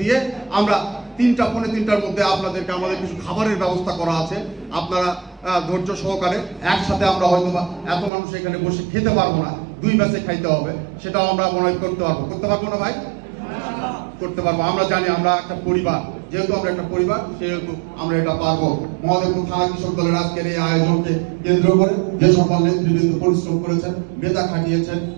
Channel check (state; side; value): drops out; left; at 8.1 s